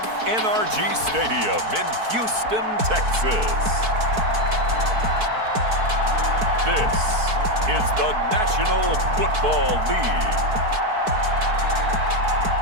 NRG Stadium in Houston, Texas, this is the National Football League.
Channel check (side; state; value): left; late; 4.5 ms